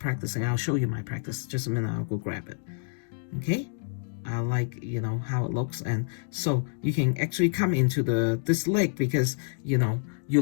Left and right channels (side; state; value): right; silent; digital silence